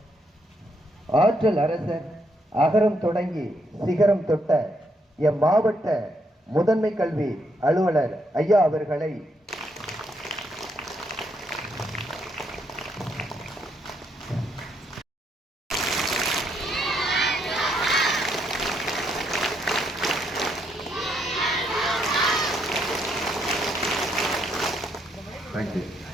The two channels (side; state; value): both; normal; correlation 0.76